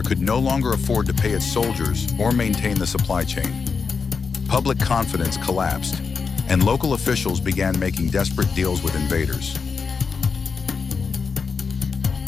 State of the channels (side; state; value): right; quieter; 5.3 dB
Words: could no longer afford to pay its soldiers or maintain the supply chain. Public confidence collapsed, and local officials began making desperate deals with invaders.